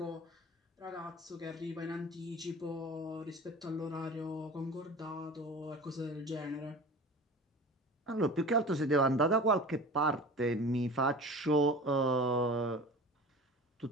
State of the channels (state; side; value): normal; both; correlation 0.37